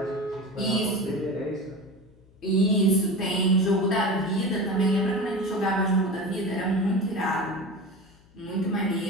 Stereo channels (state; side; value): noise; left; hum, 28 dB below the sound